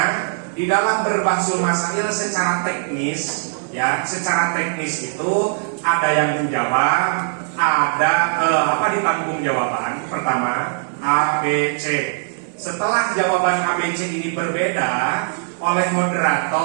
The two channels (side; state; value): left; silent; digital silence